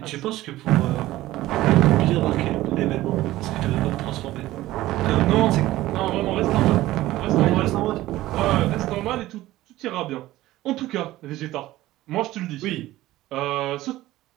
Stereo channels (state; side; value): quieter; left; 16.3 dB